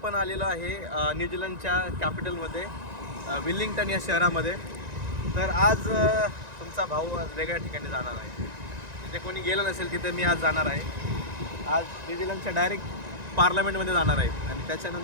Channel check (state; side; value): late; left; 1.9 ms